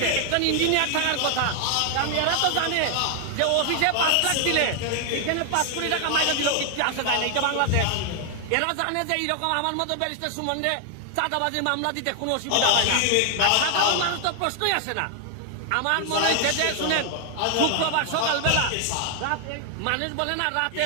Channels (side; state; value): both; different; correlation 0.00